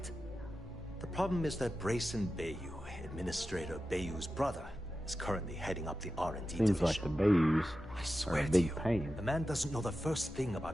The problem is that Brayson Bayou, Administrator Bayou's brother, is currently heading up the R&D division. Seems like the Bayous I are swear a to big you, pain. the man doesn't know the first thing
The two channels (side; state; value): both; normal; correlation 0.92